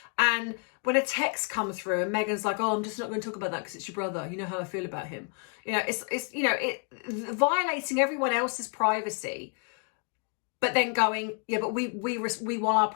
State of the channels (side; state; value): right; quieter; 39.2 dB